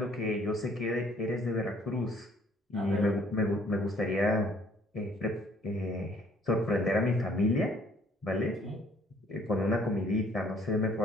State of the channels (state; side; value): normal; both; correlation 0.61